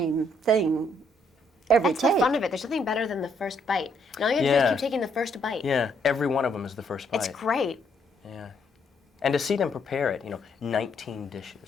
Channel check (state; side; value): normal; both; correlation 0.71